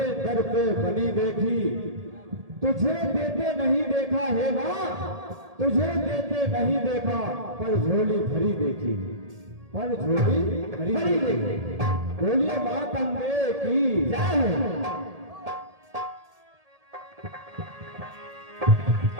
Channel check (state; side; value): late; left; 1.8 ms